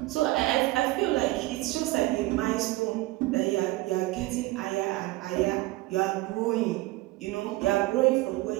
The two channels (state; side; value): quieter; left; 19.4 dB